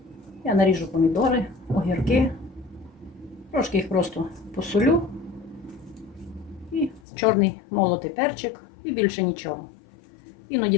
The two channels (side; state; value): right; drops out; at 7.0 s